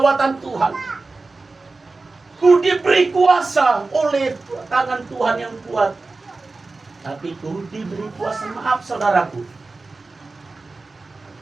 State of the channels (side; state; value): left; quieter; 3.6 dB